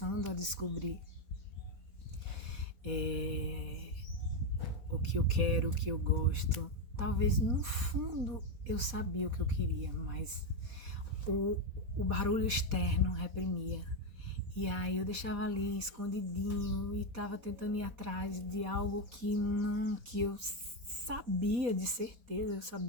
a descobrir o que eu quero, o que eu gosto. Talvez no fundo eu sabia o que eu queria, mas o barulho externo reprimia. E aí eu deixava ali escondidinho e tava tentando ir atrás de algo que eu sabia de certeza, eu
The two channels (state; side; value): late; left; 4.2 ms